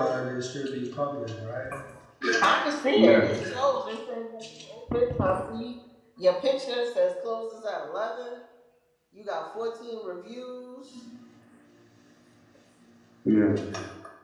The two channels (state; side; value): identical; both; correlation 1.00